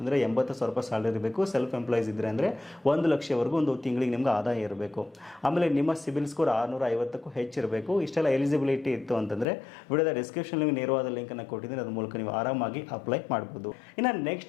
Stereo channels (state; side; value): drops out; right; at 9.5 s